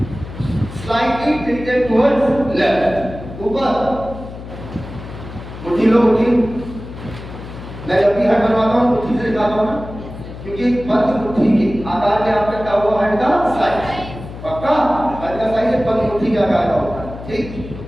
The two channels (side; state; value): left; noise; hum, 12 dB below the sound